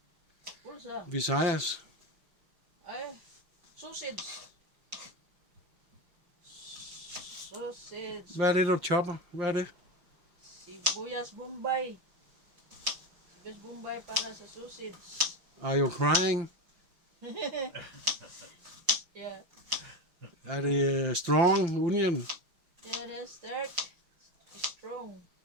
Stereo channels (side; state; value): left; late; 5.8 ms